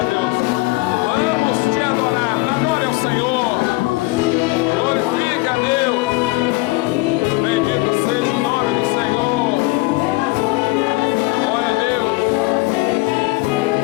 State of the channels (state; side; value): quieter; right; 22.6 dB